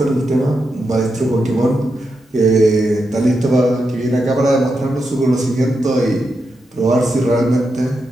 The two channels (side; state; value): both; normal; correlation 0.86